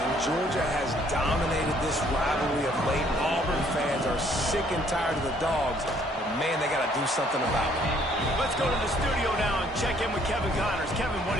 Georgia has dominated this rivalry of late. Auburn fans are sick and tired of the Dogs, but man, they got to do something about it. Let's go to the studio now and check in with Kevin Connors. Kevin, what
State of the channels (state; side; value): normal; both; correlation 0.63